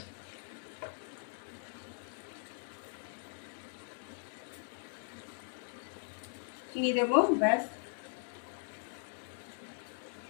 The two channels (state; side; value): silent; right; digital silence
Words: চিনি দেবো, ব্যাস।